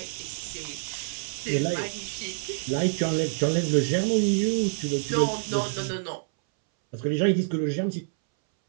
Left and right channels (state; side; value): silent; left; 60 dB below the other